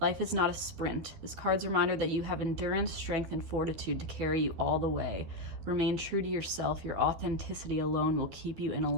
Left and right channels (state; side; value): late; left; 12 ms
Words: is not a sprint. This card's a reminder that you have endurance, strength, and fortitude to carry you all the way. Remain true to yourself. Your authenticity alone will keep you in